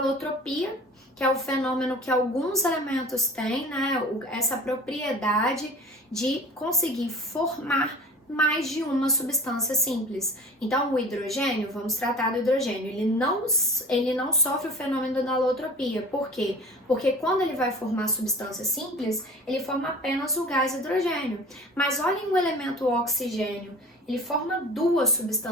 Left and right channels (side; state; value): both; normal; correlation 0.41